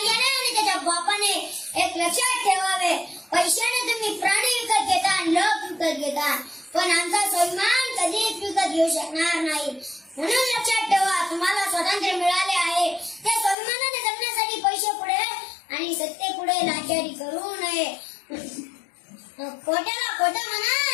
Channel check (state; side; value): drops out; right; at 13.6 s